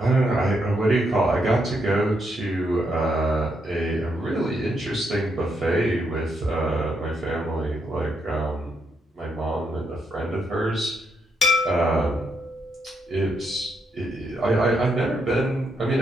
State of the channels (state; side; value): normal; both; correlation 0.78